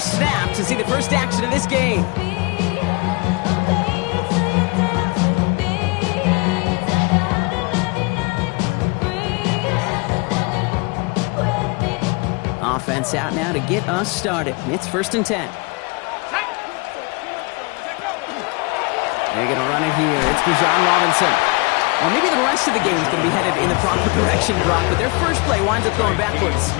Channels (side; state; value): right; quieter; 29.1 dB